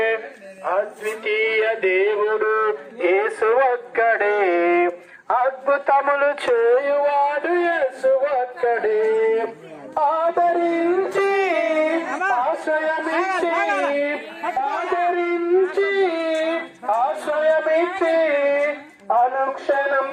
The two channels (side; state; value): both; identical; correlation 1.00